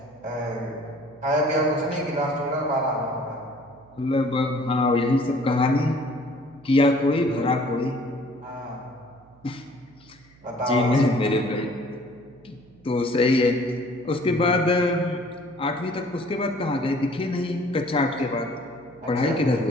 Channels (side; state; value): right; noise; hum, 27 dB below the sound